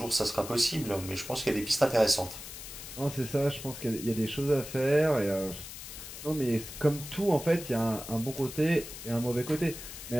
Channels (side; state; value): left; noise; hiss, 11 dB below the sound